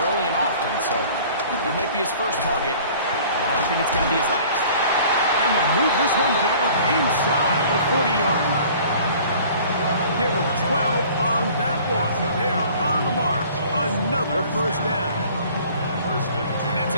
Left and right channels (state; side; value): inverted; both; correlation -0.49